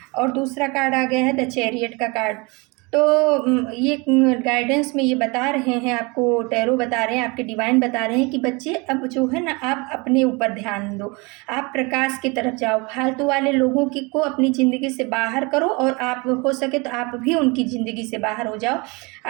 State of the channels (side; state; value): left; quieter; 27.7 dB